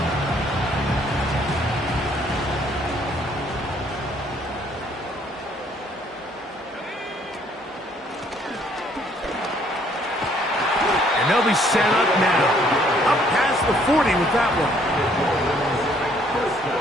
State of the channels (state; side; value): normal; both; correlation 0.64